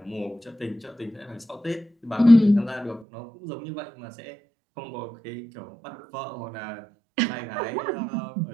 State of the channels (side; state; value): left; drops out; at 3.1 s